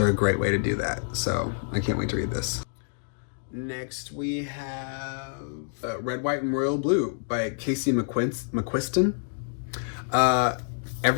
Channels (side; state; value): right; silent; digital silence